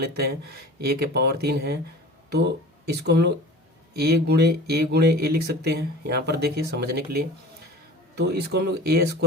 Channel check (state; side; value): normal; both; correlation 0.40